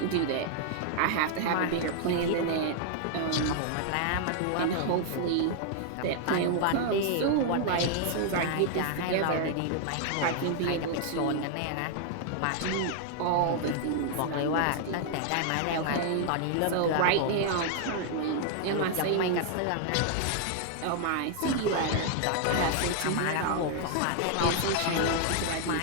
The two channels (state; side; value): different; both; correlation 0.00